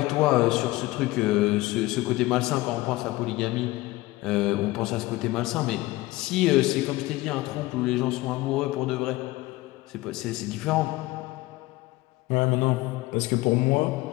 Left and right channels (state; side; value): quieter; right; 19.4 dB